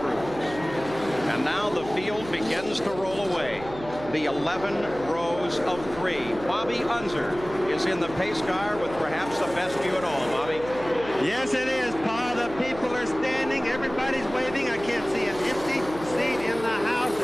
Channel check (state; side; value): noise; right; hum, 14 dB below the sound